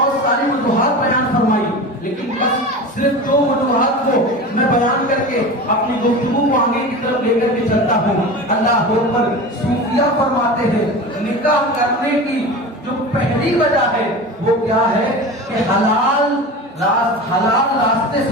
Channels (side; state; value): both; normal; correlation 0.30